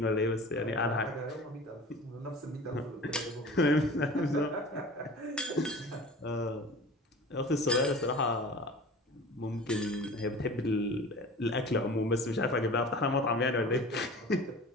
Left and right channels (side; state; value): both; normal; correlation 0.40